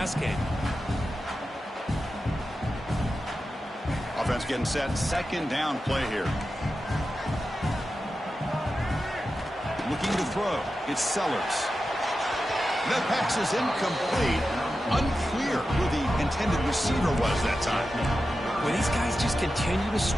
game. Offense getting set. 2nd down play here. Looking to throw. It's Sellers. That pass is incomplete. Unclear who the intended receiver was that time. Well, these guys just continue to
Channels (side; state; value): both; normal; correlation 0.91